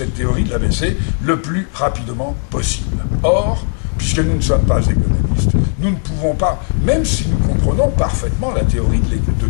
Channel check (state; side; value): silent; right; 59 dB below the other